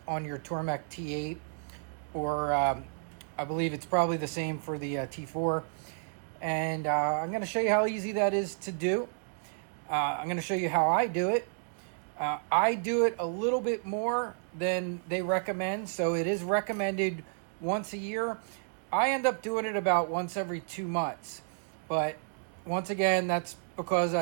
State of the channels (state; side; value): silent; left; 57 dB below the other